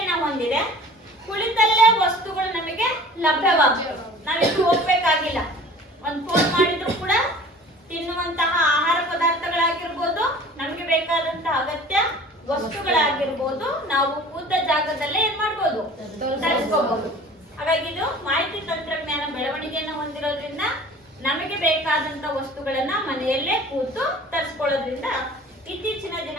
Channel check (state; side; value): normal; both; correlation 0.44